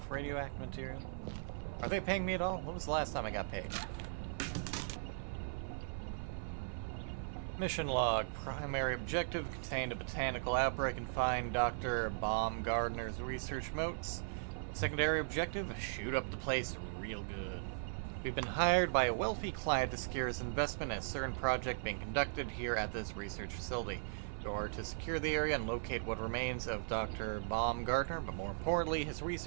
radioactive material? Are they paying me at all? When was the last time I got paid? Mission log. Primary objective: contained a botanical outbreak and find Dr. Baumgartner's research notes. Secondary objective: shoot up the place real good. We've been hired by a wealthy client to secure his investment in a certain project being conducted here at this research facility. In order to secure the area and locate what remains of Dr. Baumgartner, but more importantly, his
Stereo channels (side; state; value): left; silent; 52 dB below the other